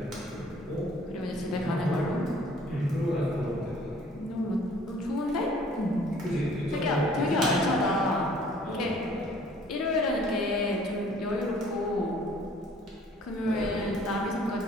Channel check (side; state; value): both; normal; correlation 0.56